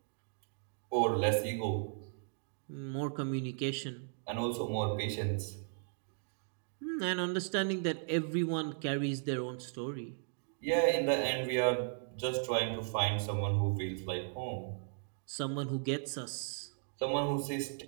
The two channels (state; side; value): silent; left; digital silence